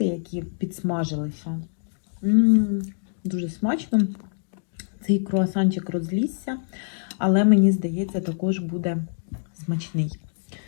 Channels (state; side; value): silent; right; digital silence